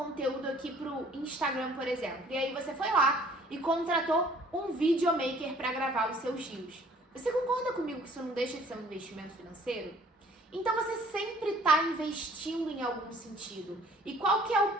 aqui pro Instagram, por exemplo. E aí você foi lá e contratou um videomaker para gravar os seus reels. Você concorda comigo que isso não deixa de ser um investimento financeiro? Então você sempre tá investindo em algum sentido. E qual que é o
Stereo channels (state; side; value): normal; both; correlation 0.56